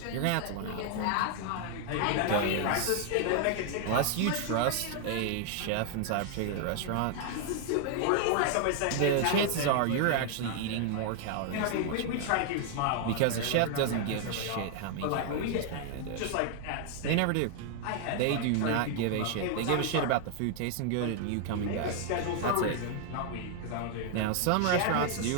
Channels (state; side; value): different; both; correlation 0.00